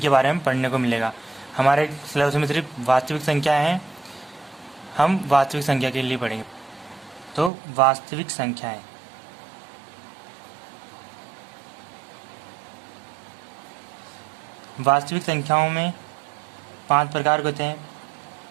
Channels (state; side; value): drops out; left; at 7.5 s